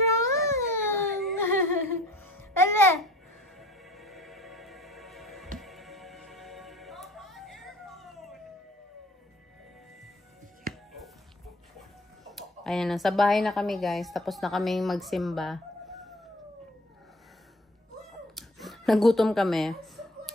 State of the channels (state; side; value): normal; both; correlation 0.48